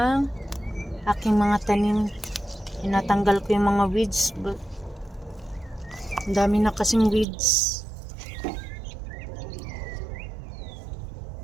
aking mga tanim. Tinatanggal ko yung mga weeds. Ang dami na kasing weeds.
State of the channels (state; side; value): drops out; left; at 7.2 s